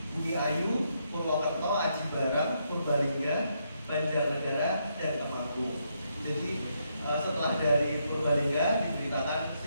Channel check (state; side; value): inverted; both; correlation -0.78